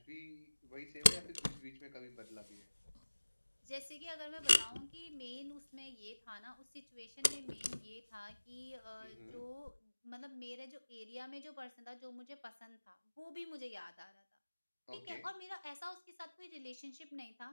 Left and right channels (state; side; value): inverted; both; correlation -1.00